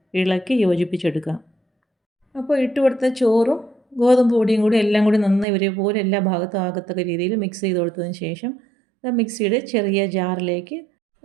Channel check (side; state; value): left; drops out; at 5.5 s